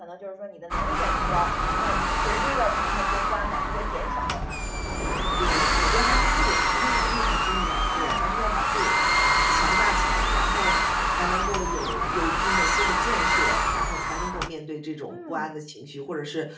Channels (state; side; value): identical; both; correlation 1.00